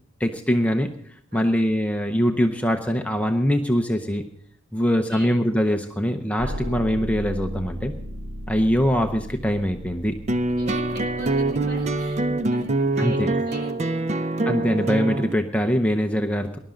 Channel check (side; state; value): both; normal; correlation 0.82